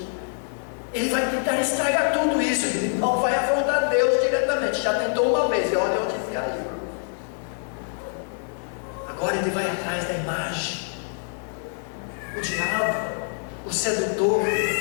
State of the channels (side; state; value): right; silent; digital silence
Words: Ele vai tentar estragar tudo isso, ele não vai afrontar Deus diretamente, já tentou uma vez, e olha onde se caiu. Agora ele vai atrás da imagem. O diabo, o sedutor,